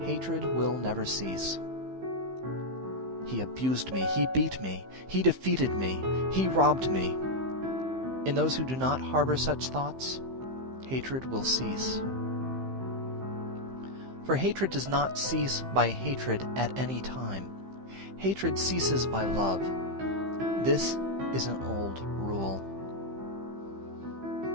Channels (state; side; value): late; left; 15 ms